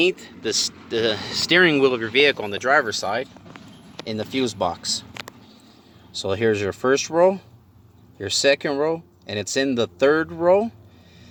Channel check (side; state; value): both; identical; correlation 1.00